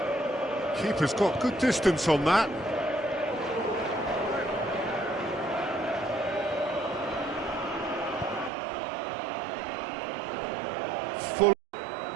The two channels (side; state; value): left; drops out; at 8.5 s